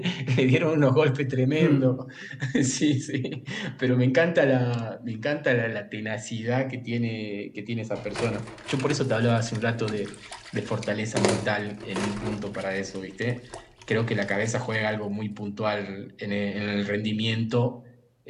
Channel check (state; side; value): identical; both; correlation 1.00